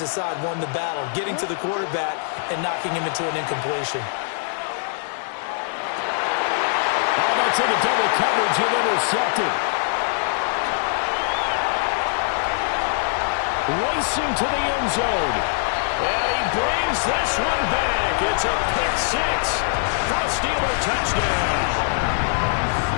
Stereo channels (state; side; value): silent; right; digital silence